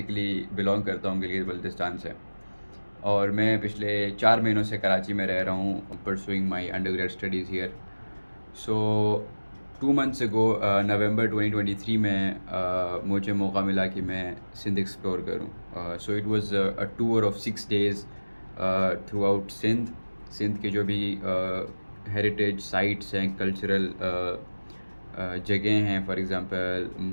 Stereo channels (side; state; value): both; inverted; correlation -1.00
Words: बिलोंग करता हूँ गिलगित बल्तिस्तान से। और मैं पिछले 4 महीनों से कराची में रह रहा हूँ pursuing my undergrad studies here. So 2 months ago November 2023 में मुझे मौका मिला कि मैं सिंध एक्सप्लोर करूँ। So it was a tour of 6 days throughout Sindh. Sindh के जो भी हेरिटेज साइट्स हैं, कल्चरल जगह हैं, फॉर एग्ज़ाम्पल